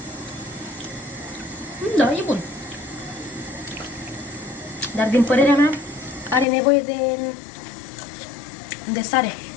Da, e bun. Dar din părerea mea are nevoie de sare.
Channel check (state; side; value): drops out; right; at 6.5 s